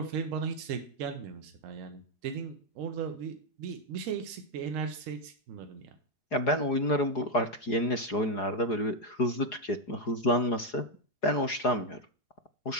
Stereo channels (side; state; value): right; late; 4.8 ms